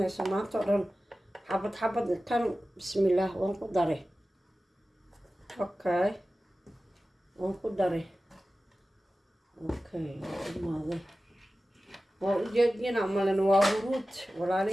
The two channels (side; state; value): both; normal; correlation 0.95